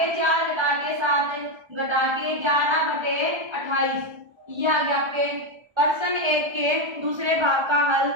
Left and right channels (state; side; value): late; left; 1.3 ms